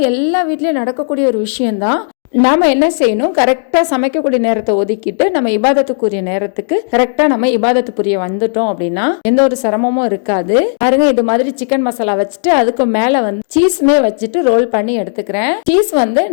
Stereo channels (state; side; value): silent; right; digital silence